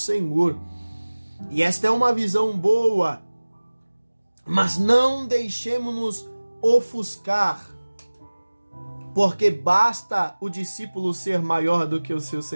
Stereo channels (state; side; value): inverted; both; correlation -1.00